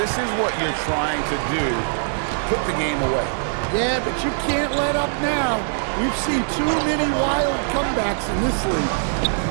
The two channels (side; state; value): left; silent; digital silence